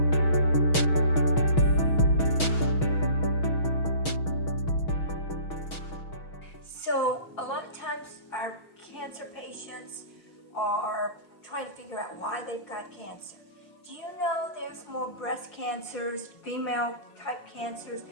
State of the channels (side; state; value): right; late; 6.2 ms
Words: So a lot of times our cancer patients are trying to figure out why they've got cancer. Do you know there's more breast cancers, female type cancers?